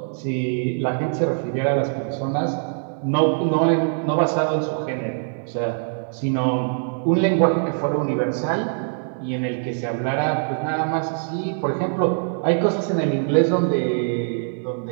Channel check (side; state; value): left; silent; 61 dB below the other